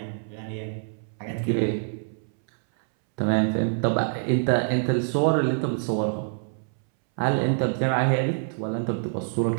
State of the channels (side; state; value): left; silent; 61 dB below the other